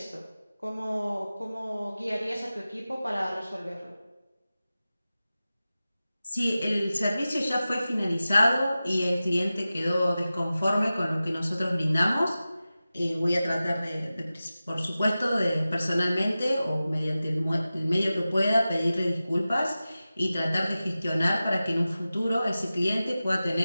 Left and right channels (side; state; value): both; inverted; correlation -0.95